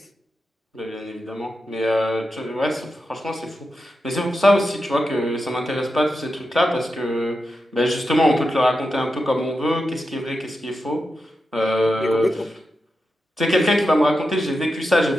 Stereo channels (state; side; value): normal; both; correlation 0.89